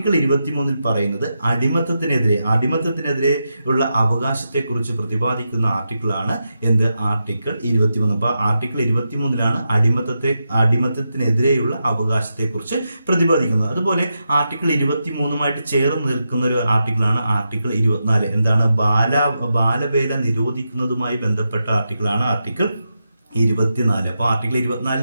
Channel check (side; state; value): both; inverted; correlation -0.87